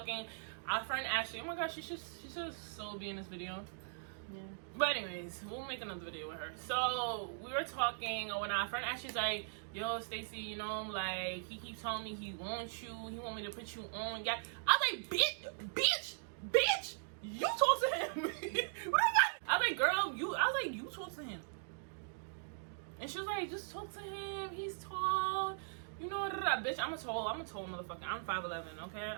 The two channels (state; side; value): silent; left; digital silence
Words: our friend Ashley, oh my gosh, she should so be in this video. Yeah. But anyways, we'll make another video with her. So we were talking when our friend Ashley's like, yo, Stacy, you know, like he keeps telling me he wants you, he want me to put you on. Yeah. I was like, bitch, you talk to him. What I was like, girl, you talk to him. And she was like, just talk to him. He's tall. You know, bitch, I'm a tall motherfucker. I'm 5'11", okay?